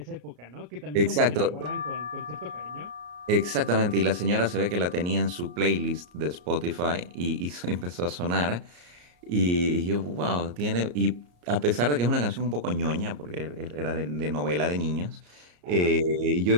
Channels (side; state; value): left; late; 34 ms